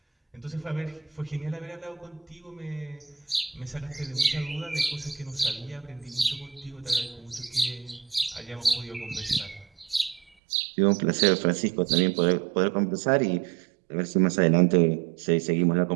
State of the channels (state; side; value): drops out; left; at 10.2 s